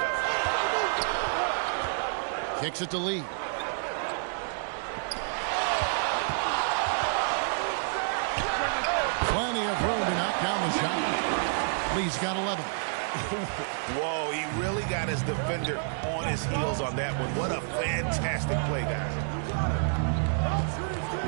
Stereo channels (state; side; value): silent; left; digital silence